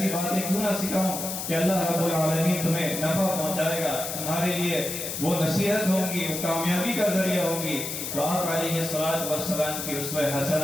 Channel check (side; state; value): left; noise; hiss, 5 dB below the sound